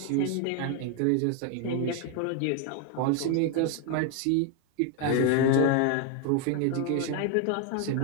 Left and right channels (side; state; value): both; different; correlation 0.01